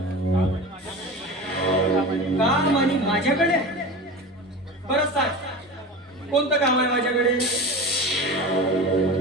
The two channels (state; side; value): normal; both; correlation 0.31